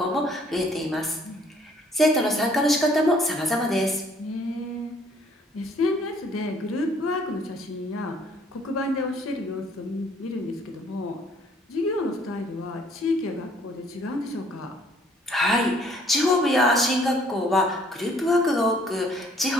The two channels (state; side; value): normal; both; correlation 0.61